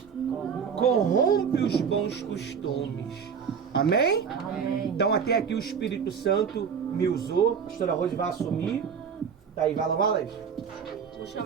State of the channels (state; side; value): quieter; left; 6.8 dB